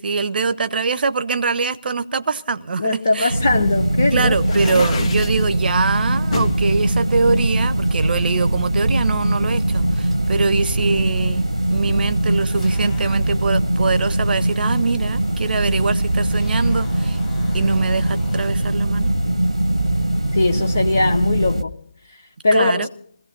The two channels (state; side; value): inverted; both; correlation -0.86